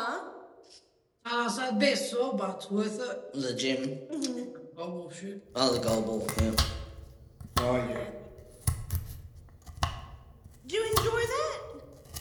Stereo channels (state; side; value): identical; both; correlation 1.00